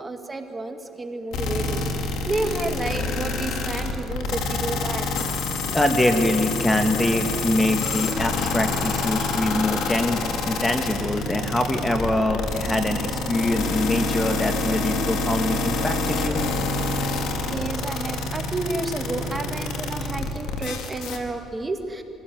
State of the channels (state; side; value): normal; both; correlation 0.75